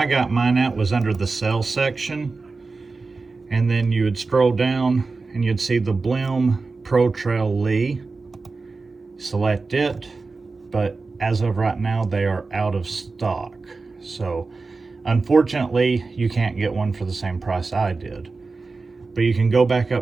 got mine at was under the sales section, and then you would scroll down and you'd see the Blim Protrail LI. Select it, but as of right now they are out of stock. So unfortunately you can't get one for the same price I did. But you can go back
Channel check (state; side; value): quieter; left; 4.0 dB